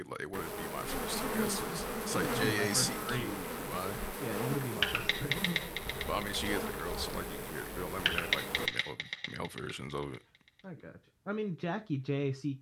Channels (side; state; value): both; identical; correlation 1.00